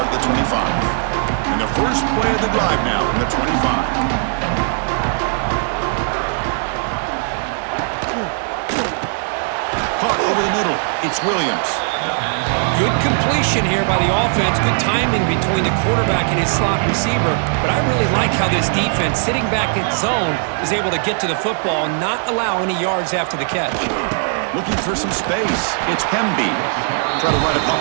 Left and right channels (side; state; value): left; silent; 61 dB below the other